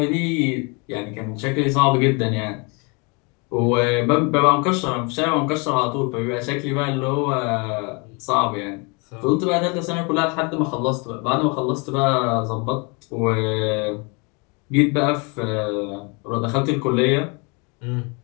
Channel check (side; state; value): right; quieter; 31.6 dB